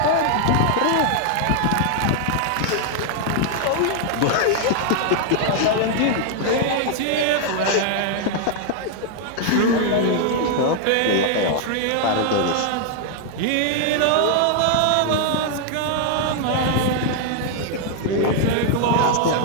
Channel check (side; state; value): both; different; correlation 0.00